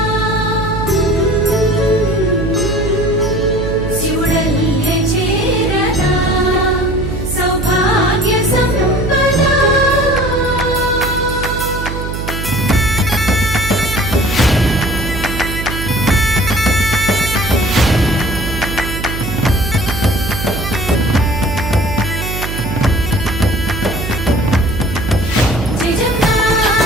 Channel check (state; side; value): noise; right; hum, 6 dB below the sound